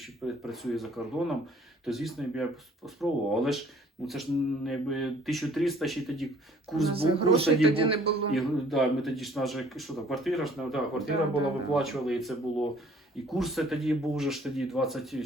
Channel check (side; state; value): both; normal; correlation 0.56